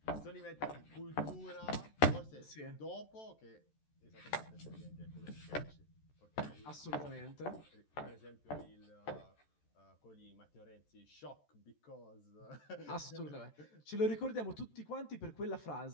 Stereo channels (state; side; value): late; right; 14 ms